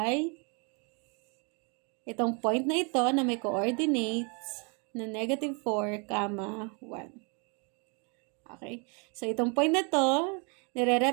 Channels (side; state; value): left; quieter; 34.5 dB